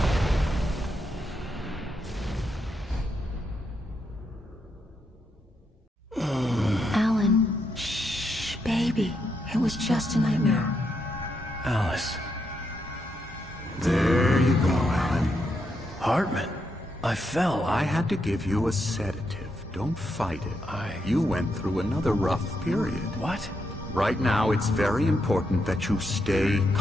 Alan, shh, baby. It was just a nightmare. Alice. There you go, Alan. Hartman. I fell. I had to give you a sedative. Don't fight it. You went through another rough period. What? Right now, it's very important that you stay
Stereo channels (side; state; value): both; normal; correlation 0.81